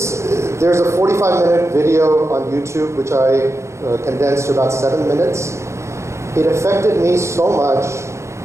There's a 45-minute video on YouTube, which I condensed to about 7 minutes. It affected me so much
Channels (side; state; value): left; late; 0.14 ms